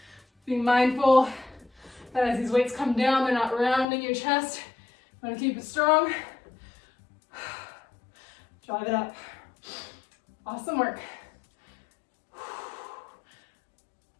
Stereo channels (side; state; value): right; drops out; at 3.9 s